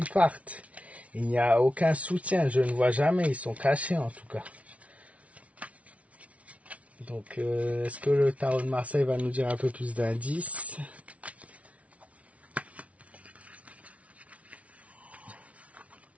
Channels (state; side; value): late; left; 0.065 ms